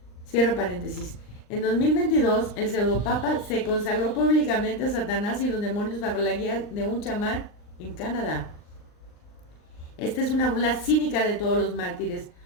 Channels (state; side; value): late; right; 39 ms